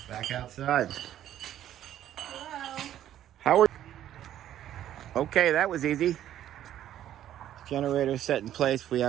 Back outside. Hello. How are you? Okay, that was easy. Generator set in place. We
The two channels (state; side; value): quieter; left; 11.7 dB